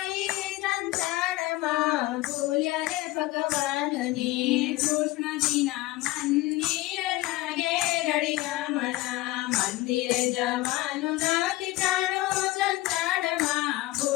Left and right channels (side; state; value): right; quieter; 18.5 dB